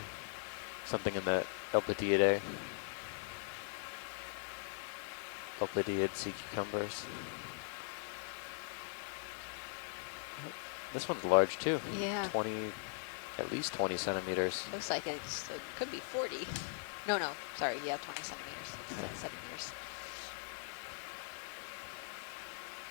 something in the Elpidiidae. Elpidiid sea cucumbers. This one's large too. Yeah. 20, at least 20 centimeters. Looks like it could be 40. No, sorry, yeah, 20 centimeters. It's 10 centimeters.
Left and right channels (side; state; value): right; silent; digital silence